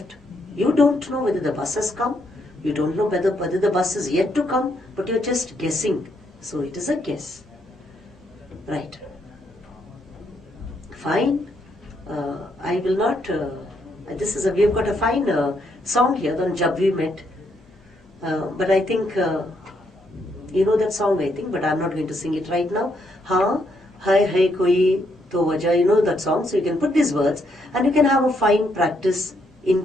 You don't know whether the bus has come. You don't know whether the bus is yet to come, but you're just guessing. So it is a guess. Right. Fine. I will not, we have got a fine song here on Jab We Met. But I think, you know that song I think, but I'm not going to sing it right now. Ha, hai koi to wajah, you know that song. So you can put these words and you can have a fine practice in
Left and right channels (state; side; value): normal; both; correlation 0.75